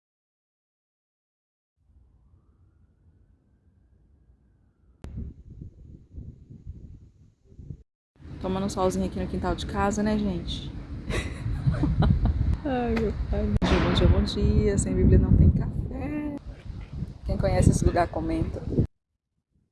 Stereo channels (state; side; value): identical; both; correlation 1.00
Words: Tomando um solzinho aqui no quintal de casa, né, gente? Ai, meu pai. Bom dia, bom dia, bom dia. Sem Bíblia não tem café. Quem conhece esse lugar, comenta.